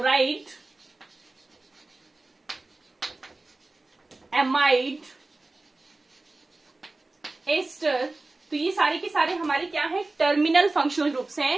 एमाइड, एस्टर। तो ये सारे के सारे हमारे क्या हैं, टर्मिनल फंक्शनल ग्रुप्स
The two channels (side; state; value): left; quieter; 3.2 dB